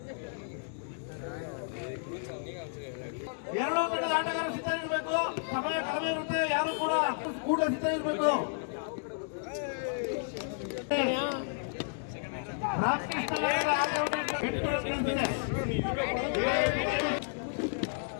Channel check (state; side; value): silent; right; digital silence